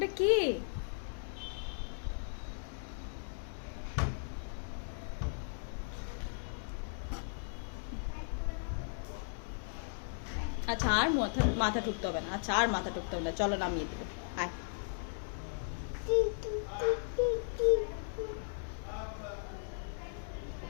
কে? আচ্ছা আর মাথা মাথা ঠুকতে হবে না, আচ্ছা আর মাথা ঠুকতে হবে না, চলো নামিয়ে দেবো। আয়।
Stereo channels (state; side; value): silent; right; 53 dB below the other